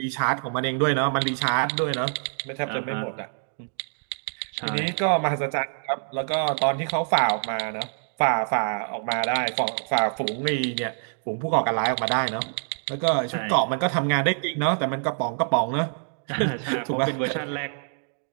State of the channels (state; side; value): silent; left; digital silence